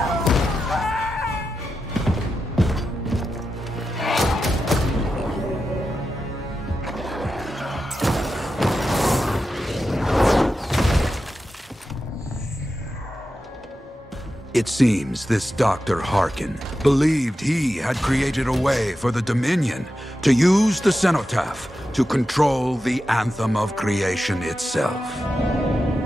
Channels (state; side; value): normal; both; correlation 0.90